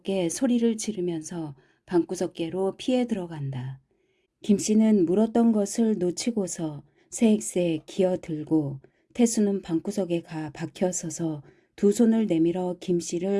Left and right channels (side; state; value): both; identical; correlation 1.00